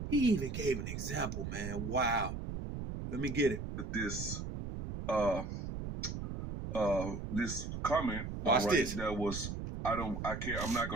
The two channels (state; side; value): noise; right; rumble, 5 dB below the sound